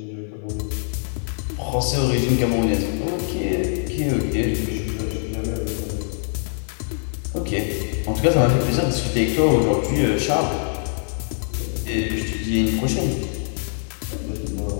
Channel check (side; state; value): right; silent; 57 dB below the other